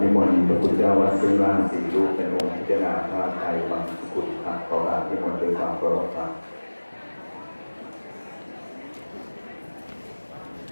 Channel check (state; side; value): inverted; both; correlation -1.00